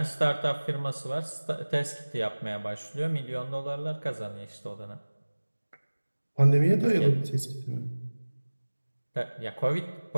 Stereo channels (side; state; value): both; inverted; correlation -1.00